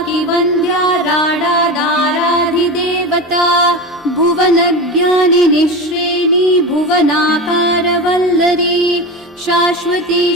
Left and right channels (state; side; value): normal; both; correlation 0.24